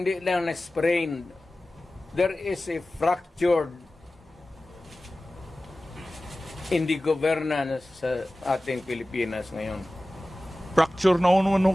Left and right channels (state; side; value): normal; both; correlation 0.96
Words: lang na-sprained. There is a fractured in the governance sa ating Pilipinas ngayon. Fracture na ano